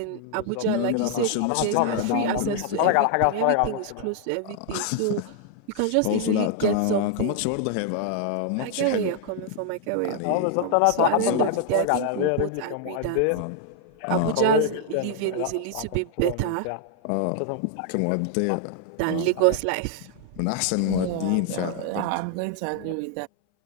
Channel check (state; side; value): different; both; correlation 0.00